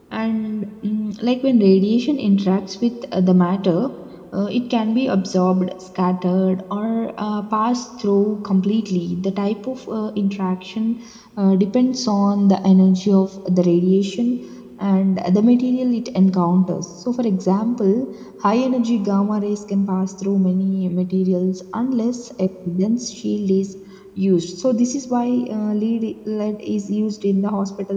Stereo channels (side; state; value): both; identical; correlation 1.00